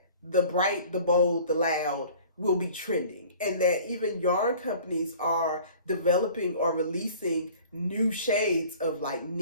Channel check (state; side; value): inverted; both; correlation -0.47